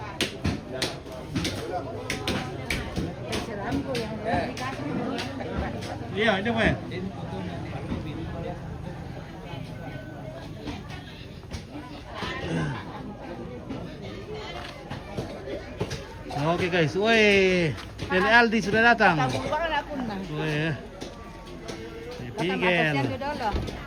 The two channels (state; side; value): identical; both; correlation 1.00